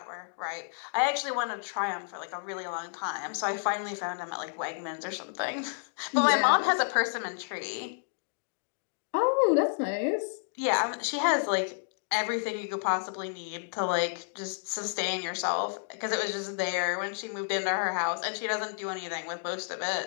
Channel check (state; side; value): silent; right; digital silence